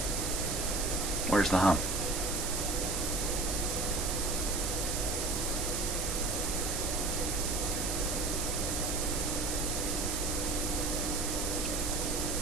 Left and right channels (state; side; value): noise; right; hiss, 1 dB below the sound